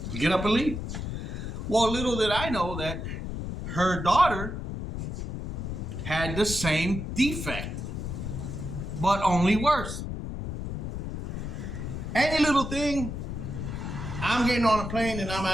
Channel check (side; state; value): left; noise; rumble, 5 dB below the sound